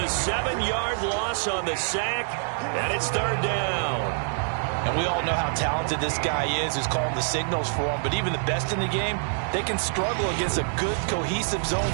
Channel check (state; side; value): silent; left; digital silence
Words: 7-yard loss on the sack, and it's 3rd down. And we all know how talented this guy is who's calling the signals for him. But even the best in the game, they can struggle against a good, cohesive zone